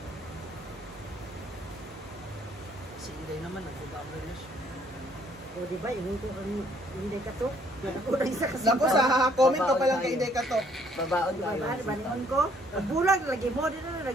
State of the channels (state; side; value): normal; both; correlation 0.64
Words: Si Inday naman, nag-bumper na siya. O di ba, ingon ko ang hindi ka to. Ako na isa kasi. Naku, sa comment pa palang kay Inday Katok. Babaon Di ba, tayo. baningon ko. Ang bulag, lagi mo din na,